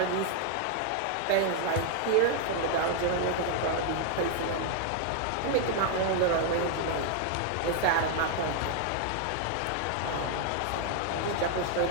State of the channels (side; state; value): both; different; correlation 0.00